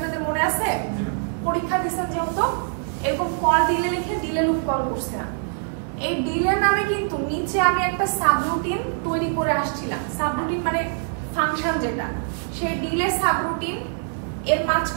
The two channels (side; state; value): left; silent; 63 dB below the other